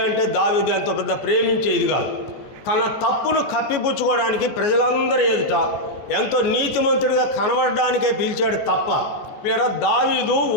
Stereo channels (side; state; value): right; late; 14 ms